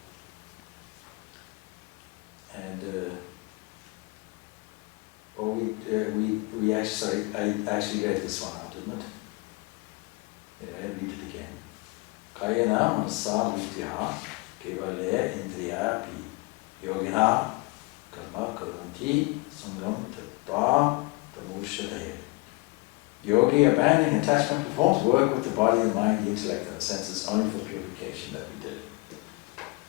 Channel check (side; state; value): right; quieter; 26.0 dB